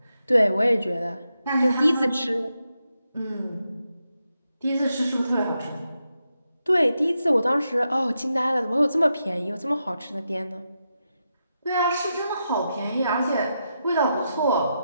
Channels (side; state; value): both; inverted; correlation -0.86